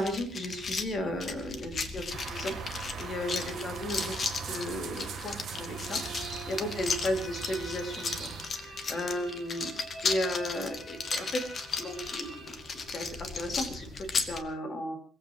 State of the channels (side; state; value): both; normal; correlation 0.74